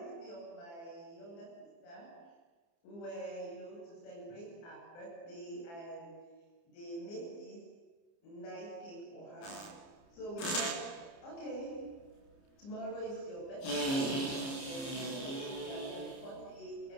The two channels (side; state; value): right; late; 29 ms